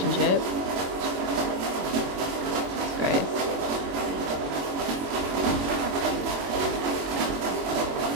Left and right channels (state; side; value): late; left; 22 ms